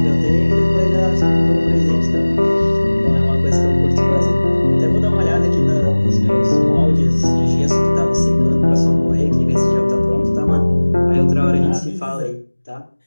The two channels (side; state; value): both; inverted; correlation -1.00